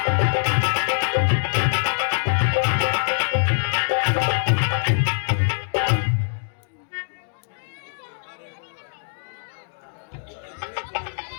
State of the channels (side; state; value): right; silent; digital silence